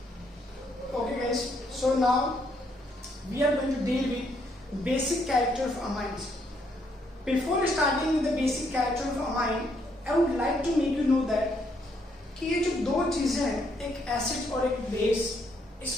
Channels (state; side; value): normal; both; correlation 0.72